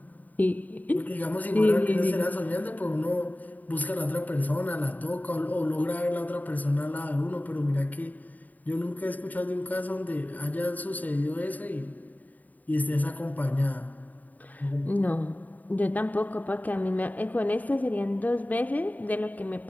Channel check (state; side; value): late; right; 0.079 ms